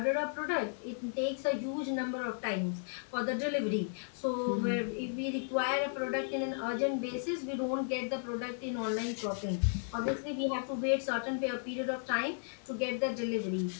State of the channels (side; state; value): right; silent; digital silence